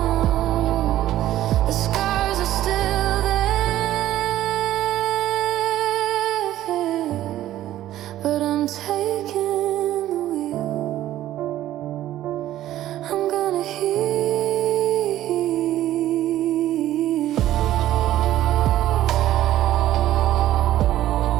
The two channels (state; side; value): quieter; left; 13.5 dB